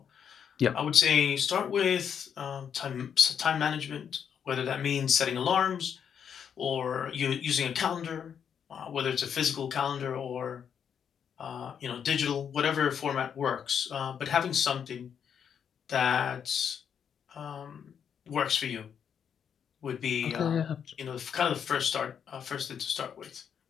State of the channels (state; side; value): quieter; right; 7.8 dB